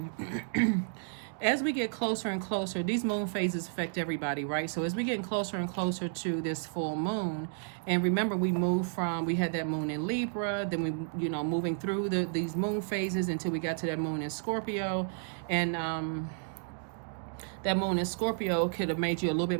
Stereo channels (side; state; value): left; silent; digital silence